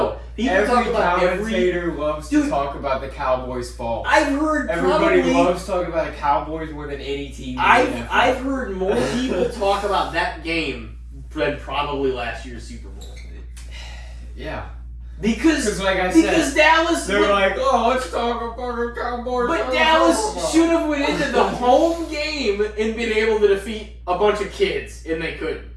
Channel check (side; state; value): both; identical; correlation 1.00